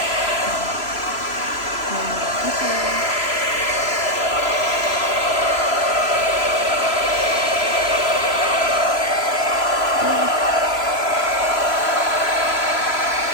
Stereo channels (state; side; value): late; right; 3.0 ms